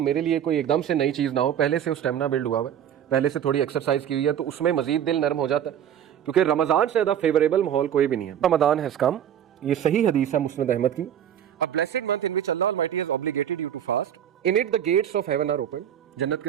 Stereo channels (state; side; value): quieter; left; 9.8 dB